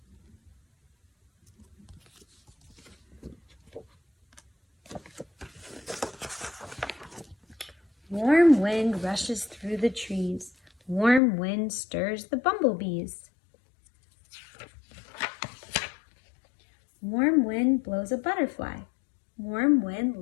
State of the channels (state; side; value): drops out; right; at 11.2 s